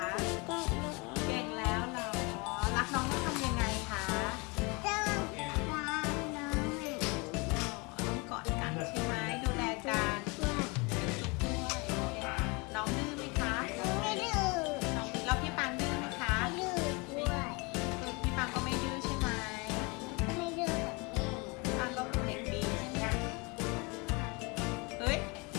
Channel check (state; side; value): quieter; right; 28.5 dB